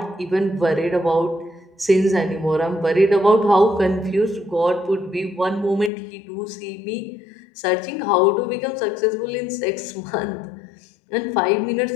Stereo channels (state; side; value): drops out; right; at 5.9 s